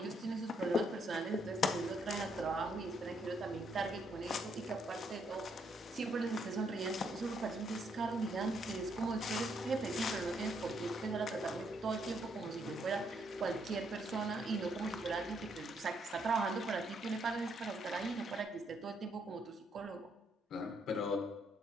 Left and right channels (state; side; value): normal; both; correlation 0.73